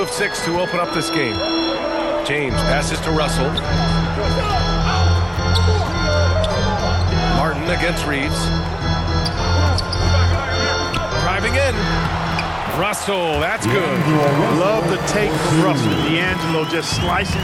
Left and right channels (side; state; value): both; identical; correlation 1.00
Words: of 6 to open up this game. James passes to Russell. Martin against Reeves. Driving in. Russell, that's good. Love the take from Russell. D'Angelo just slicing